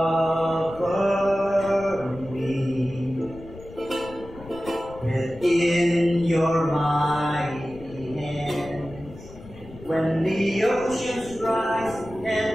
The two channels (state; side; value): noise; left; rumble, 17 dB below the sound